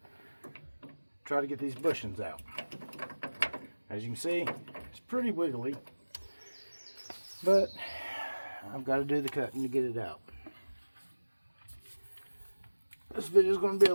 Try to get these bushings out. As you can see, it's pretty wiggly. But I've got to do the cutting to get it out. This video is going to be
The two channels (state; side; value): inverted; both; correlation -1.00